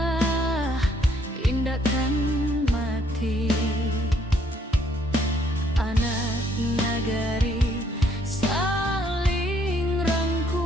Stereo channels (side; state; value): both; normal; correlation 0.67